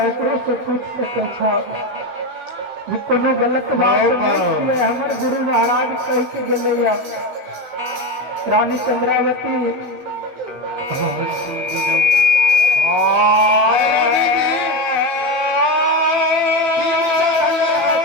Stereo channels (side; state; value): left; late; 15 ms